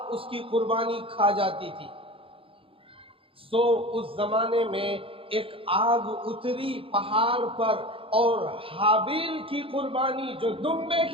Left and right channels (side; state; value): left; late; 0.26 ms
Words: اس کی قربانی کھا جاتی تھی۔ سو اس زمانے میں ایک آگ اتری پہاڑ پر، اور حابیل کی قربانی جو دمبے